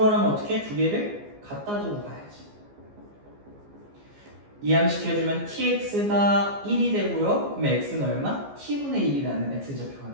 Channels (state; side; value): late; left; 14 ms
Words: 어떻게? 두 개를 갖다 두고 가야지. 이항시켜주면 tx가 1이 되고요. 그럼 x는 얼마? t분의 1이라는 x좌표가